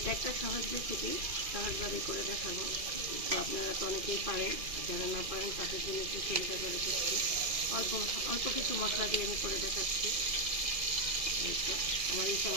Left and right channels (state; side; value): late; left; 2.4 ms